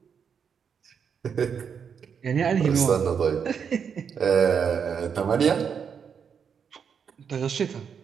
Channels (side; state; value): left; quieter; 7.0 dB